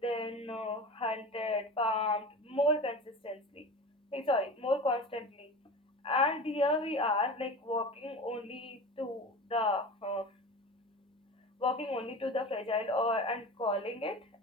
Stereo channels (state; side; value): normal; both; correlation 0.32